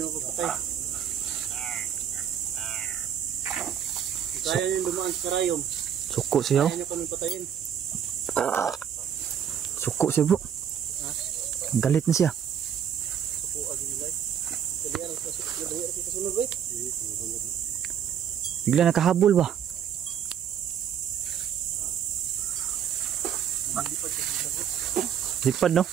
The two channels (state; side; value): quieter; left; 8.8 dB